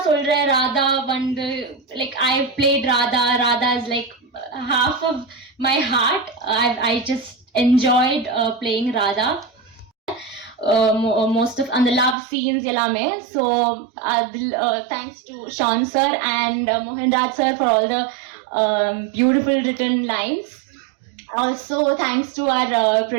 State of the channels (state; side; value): drops out; left; at 12.2 s